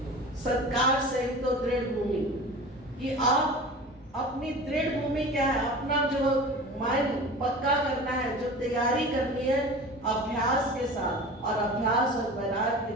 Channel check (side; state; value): both; normal; correlation 0.36